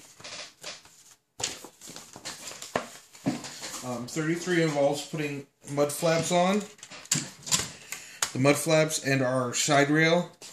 33 involves putting mud flaps on. The mud flaps and our side rail.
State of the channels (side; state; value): both; identical; correlation 1.00